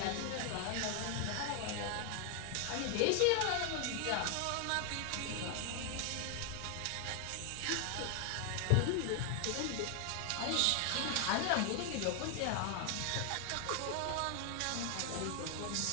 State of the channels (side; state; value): both; different; correlation 0.00